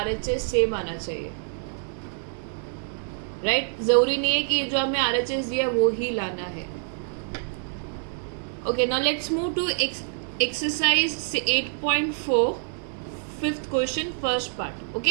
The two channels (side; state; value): left; silent; digital silence